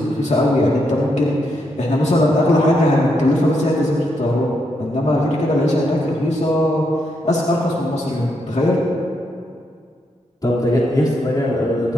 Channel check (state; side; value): normal; both; correlation 0.79